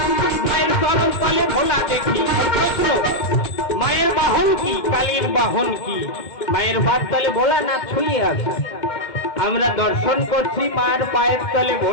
মায়ের চরণ তলে ভোলা দেখি মায়ের বাহন কি, কালীর বাহন কি? মায়ের পায়ের তলে ভোলানাথ ছুঁয়ে আছে, আমরা দর্শন করছি মায়ের পায়ের তলে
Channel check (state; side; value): late; right; 2.2 ms